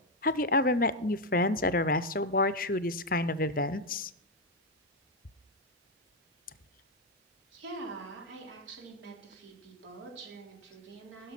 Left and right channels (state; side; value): normal; both; correlation 0.04